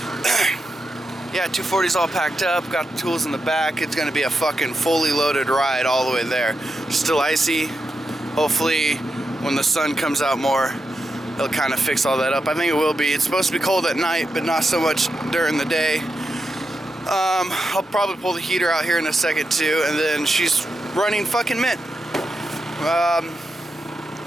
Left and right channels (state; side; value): normal; both; correlation 0.87